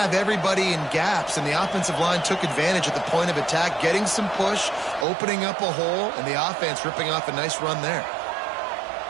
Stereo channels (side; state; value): left; drops out; at 5.1 s